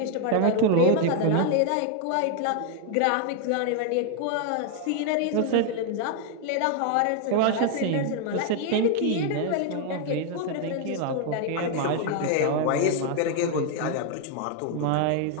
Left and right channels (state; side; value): different; both; correlation 0.00